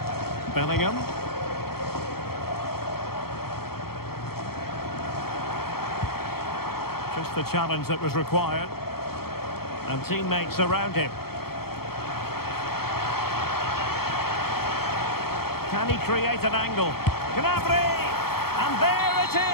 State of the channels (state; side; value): late; right; 0.95 ms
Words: Bellingham. Just the challenge that was required. And teammates around him. Can he create an angle? Gnabry! And there it